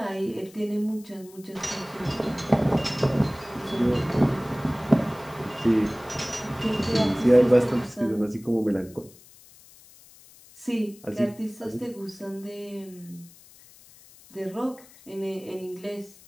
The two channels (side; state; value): left; noise; hiss, 23 dB below the sound